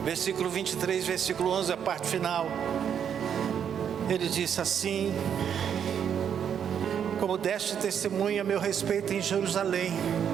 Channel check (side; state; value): left; quieter; 8.3 dB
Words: Versículo 23, versículo 11, a parte final. Ele disse assim: como deste testemunho a meu respeito em Jerusalém,